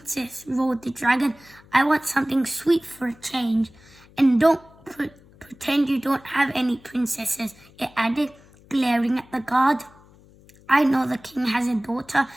roared the dragon. "I want something sweet for a change. And don't pretend you don't have any princesses," it added, glaring at the guard. "I know the king has a daughter.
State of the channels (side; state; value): left; noise; hum, 26 dB below the sound